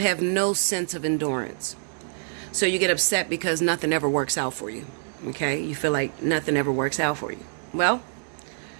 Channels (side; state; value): left; silent; digital silence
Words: no sense of endurance. So you get upset because nothing ever works out for you, okay? You feel like nothing ever works out for you. Well,